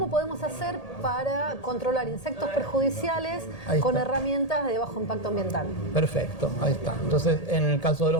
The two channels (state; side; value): late; right; 1.8 ms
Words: podemos hacer para controlar insectos perjudiciales con herramientas de bajo impacto ambiental? Perfecto, ahí está. Entonces, en el caso de